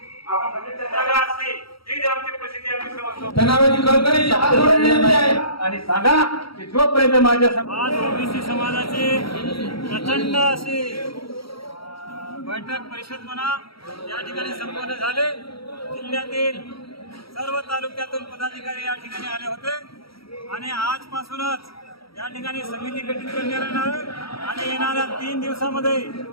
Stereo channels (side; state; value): right; late; 0.75 ms